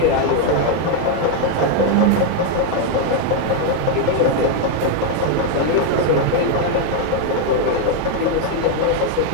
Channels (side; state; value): both; different; correlation 0.00